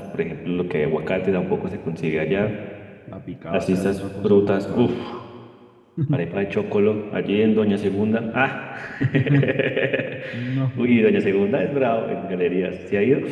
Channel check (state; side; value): identical; both; correlation 1.00